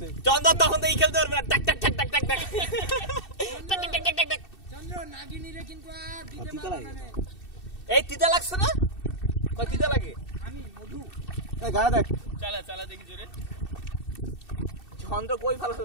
চন্দ্র তখন তো এই খেলতে পারবে না, টাক টাক টাক টাক টাক টাক চন্দ্র নাগিনীরে কিন্তু আর দিতে পারবে না। এই তিতা লাগছে না? কই তিতা লাগে? আমি মধু এই গায়ে দেখ, চালা দেখি জোরে। চন্দ্র কই ভালো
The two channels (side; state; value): right; late; 2.7 ms